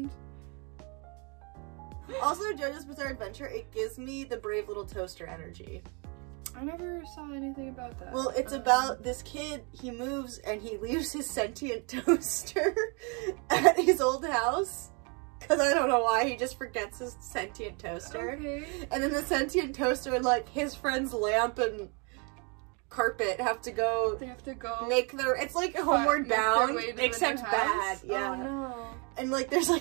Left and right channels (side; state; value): left; quieter; 33.8 dB